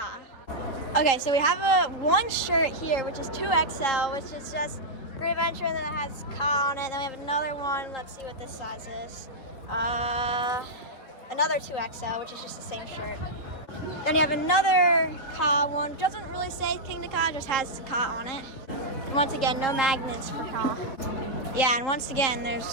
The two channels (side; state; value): right; late; 3.8 ms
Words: Okay, so we have one shirt here, which is 2XL, which is just Great Adventure, and then it has Ka on it. Then we have another one. Let's see what this size is. Another 2XL, which is just the same shirt. Then you have another Ka one. Doesn't really say Kingda Ka, just has Ka on it. And once again, no magnets for Ka. Yeah, and once again,